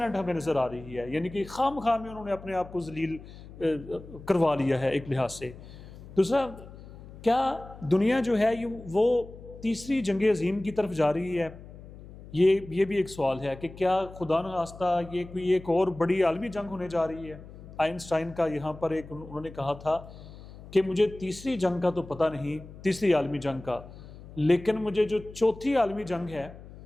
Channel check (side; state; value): left; noise; hum, 17 dB below the sound